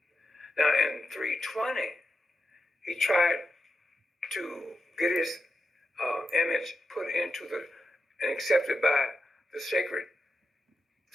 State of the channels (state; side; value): normal; both; correlation 0.88